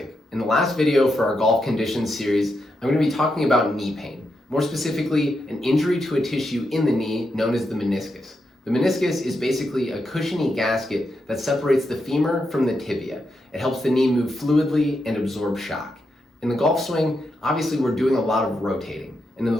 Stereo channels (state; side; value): normal; both; correlation 0.84